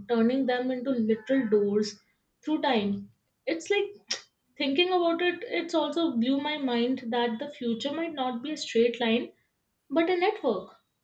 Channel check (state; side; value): identical; both; correlation 1.00